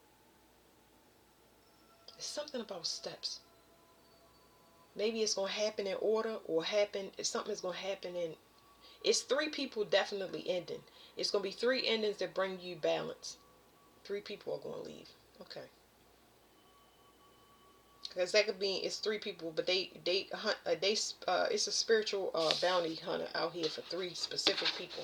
There's something about steps. Maybe it's going to happen in order, or something's going to happen in... It's 3 people definitely ending. It's going to be 3 endings that bring you balance. 3 people are going to leave. Okay. Because that could mean it's 3 people, but it's a spiritual bounty hunter out here for 3 specific people.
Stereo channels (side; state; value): both; identical; correlation 1.00